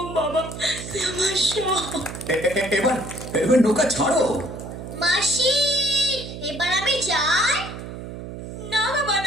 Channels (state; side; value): noise; right; hum, 10 dB below the sound